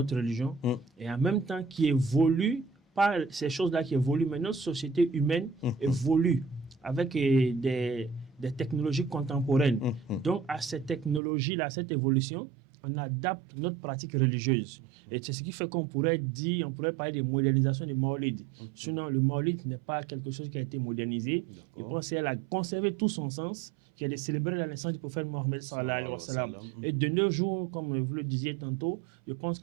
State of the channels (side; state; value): left; drops out; at 11.2 s